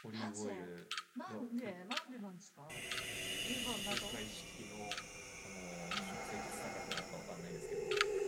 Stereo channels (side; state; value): both; identical; correlation 1.00